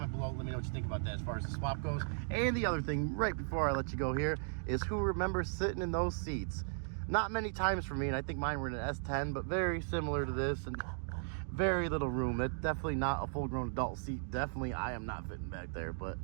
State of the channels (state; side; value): silent; left; digital silence